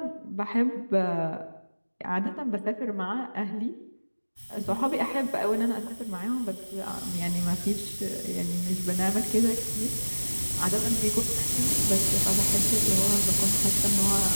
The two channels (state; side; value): inverted; both; correlation -1.00